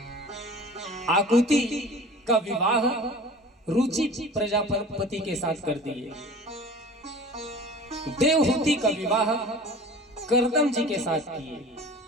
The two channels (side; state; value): both; normal; correlation 0.41